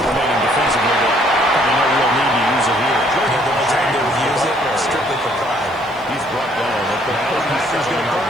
remaining defensively, but probably no real need to use it here. The only time they would use it strictly for pride. He's brought down at the Now the Packers going to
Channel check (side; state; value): right; noise; hiss, 30 dB below the sound